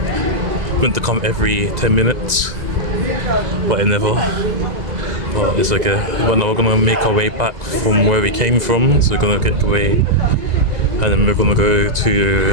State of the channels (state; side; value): late; left; 1.9 ms